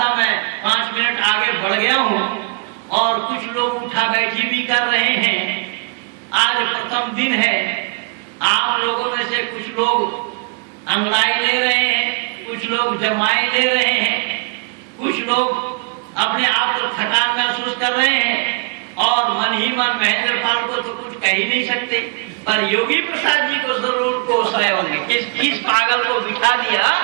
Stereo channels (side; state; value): left; quieter; 33.2 dB